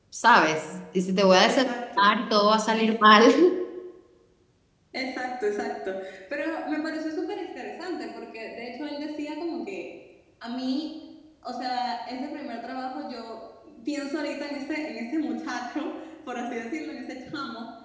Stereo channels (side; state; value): both; identical; correlation 1.00